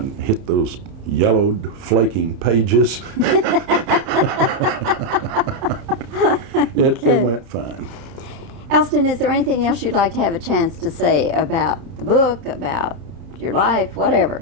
hit those yellowed, flaking pages. It went fine. Elston, is there anything else you'd like to have a chance to say about the book, about your life,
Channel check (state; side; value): late; left; 30 ms